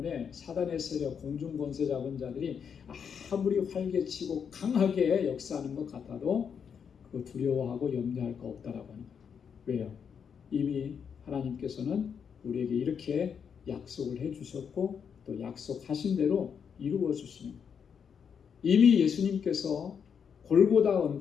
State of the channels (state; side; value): quieter; right; 7.1 dB